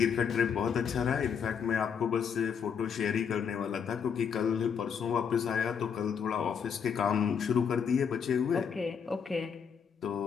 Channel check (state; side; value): quieter; right; 7.0 dB